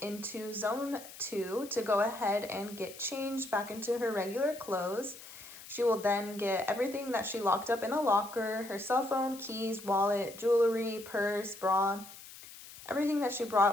into zone 2 to go ahead and get changed back into her regular clothes. She will then get everything that she locked up in a locker, her cell phone, keys, wallet, jewelry, purse, bra, everything that she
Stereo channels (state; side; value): noise; left; hiss, 16 dB below the sound